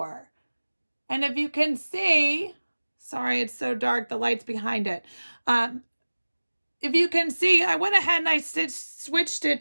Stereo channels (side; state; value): both; inverted; correlation -1.00